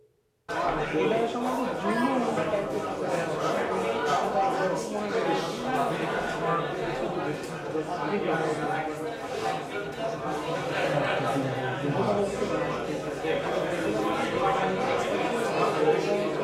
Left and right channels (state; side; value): identical; both; correlation 1.00